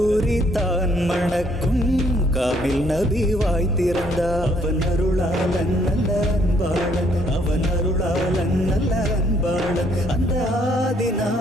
தான் மணக்கும் காமில் நபி வாய் திறந்தால். அவன் அருளாளன் நல்ல அன்பாளன், அவன் அருளாளன் நல்ல அன்பாளன், அந்த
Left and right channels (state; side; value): normal; both; correlation 0.67